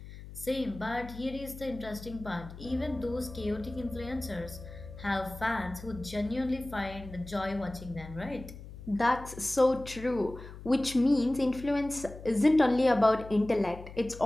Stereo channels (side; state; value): left; noise; hum, 14 dB below the sound